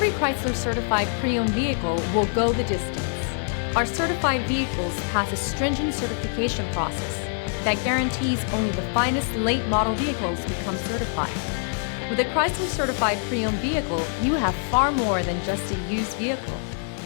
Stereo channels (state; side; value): silent; right; 62 dB below the other